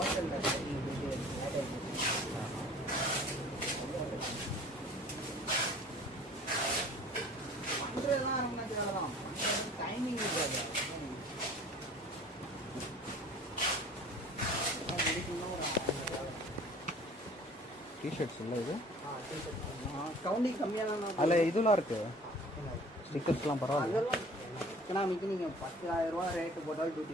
டைமிங் இருக்காது. டிஷர்ட்ஸ் இல்லை இது கவுண்டிங் கம்மியான அதில் இதெல்லாம் இருக்குது, ஸ்டிக்கர்ஸ்லாம் பரவாயில்ல. அதெல்லாம் எக்கனாமிக்கு நீங்கள் 10,000 ரூபா ரேட்டு போட்டாலும்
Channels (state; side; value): normal; both; correlation 0.48